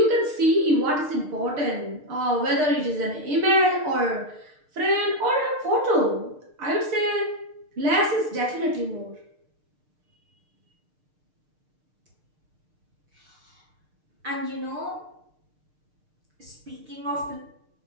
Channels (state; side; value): late; left; 6.6 ms